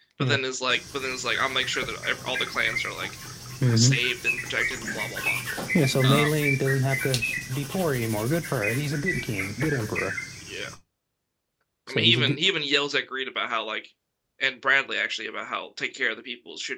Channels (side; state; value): both; identical; correlation 1.00